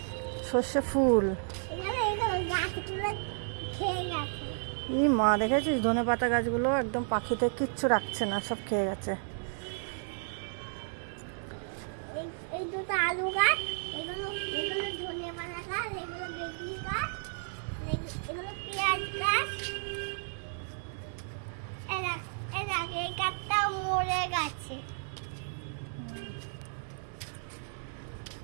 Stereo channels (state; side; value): silent; left; digital silence